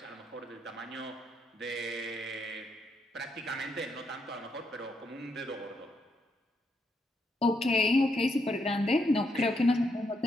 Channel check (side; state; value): both; normal; correlation 0.78